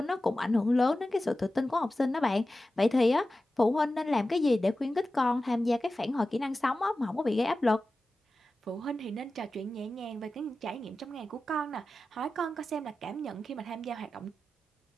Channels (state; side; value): normal; both; correlation 0.94